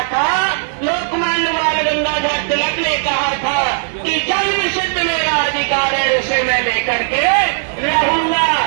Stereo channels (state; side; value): silent; left; digital silence